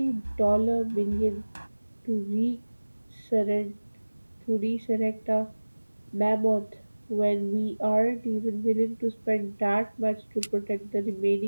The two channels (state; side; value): inverted; both; correlation -1.00